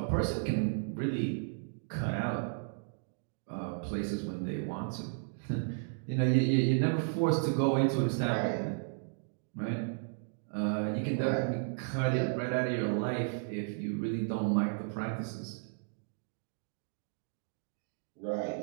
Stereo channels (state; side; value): silent; left; digital silence